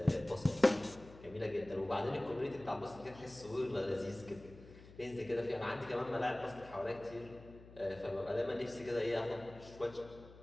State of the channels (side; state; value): left; noise; hum, 19 dB below the sound